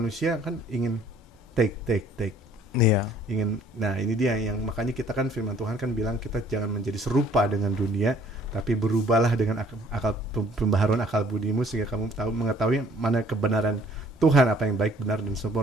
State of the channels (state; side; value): normal; both; correlation 0.57